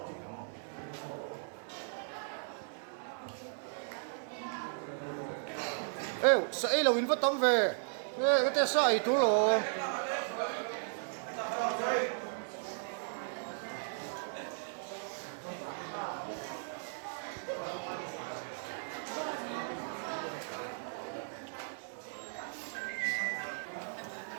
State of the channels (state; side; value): silent; left; digital silence